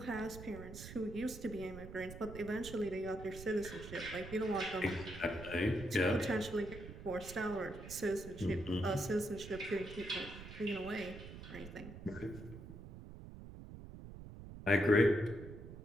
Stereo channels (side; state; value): right; noise; rumble, 12 dB below the sound